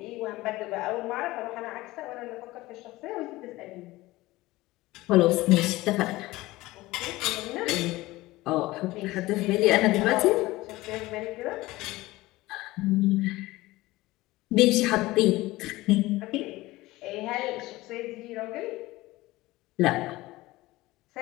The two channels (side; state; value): right; quieter; 18.9 dB